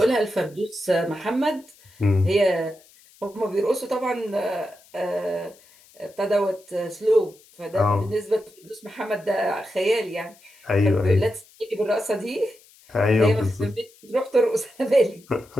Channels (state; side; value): noise; left; hiss, 27 dB below the sound